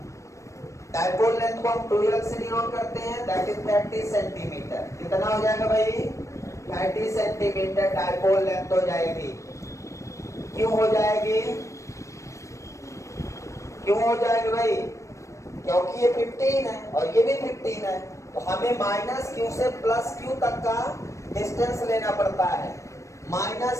डायपोल लेंथ को हम 12 से डिनोट करते हैं, दैट इज 30 सेंटीमीटर। कितना हो जाएगा भाई? 30 सेंटीमीटर डायपोल लेंथ हो जाएगी। क्यों हो जाएगी? क्यों हो जाएगी भाई? क्योंकि ये 15 है और ये भी 15 है, तो हमें -q से +q तक का डिस्टेंस लेना पड़ता है।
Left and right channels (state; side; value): late; right; 0.15 ms